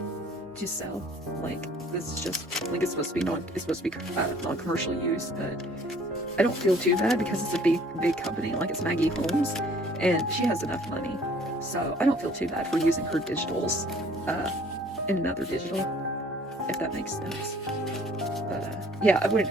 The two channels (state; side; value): normal; both; correlation 0.55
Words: to sell. Like, this is just, like, it's supposed to be non-commercial use, but I don't feel too bad because it's a big company. Like, it's Maggie Holmes, and she has enough money. So, I don't feel too bad for using her digitals in another digital, if that makes sense. But, yeah, I